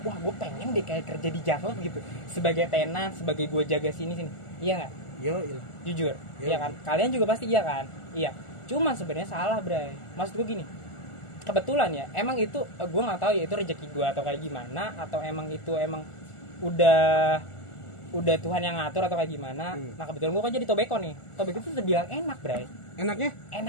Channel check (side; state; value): right; late; 1.4 ms